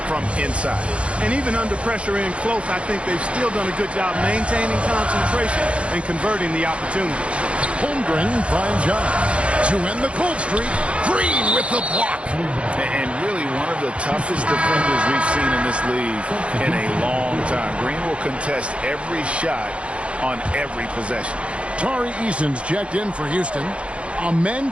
from inside. And even under pressure in close, I think they've still done a good job maintaining concentration and converting the opportunities. Holmgren finds John to end the cold streak. Green with the block. And really one of the toughest defenders we've seen in this league in a long time. Green will contest every shot on every possession. Tari Eason's checked in for Houston. Amen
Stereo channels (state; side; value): late; left; 0.060 ms